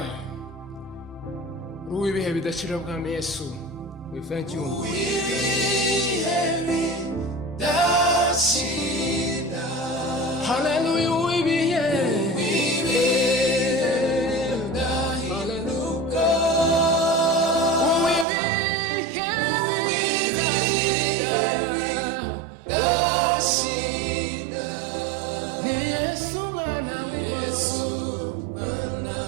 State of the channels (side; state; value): left; drops out; at 18.2 s